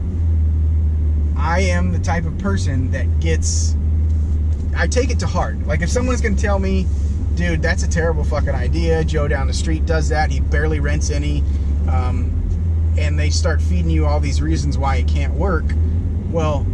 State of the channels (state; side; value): identical; both; correlation 1.00